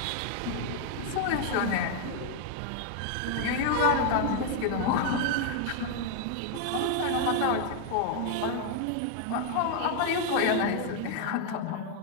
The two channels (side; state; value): both; different; correlation 0.00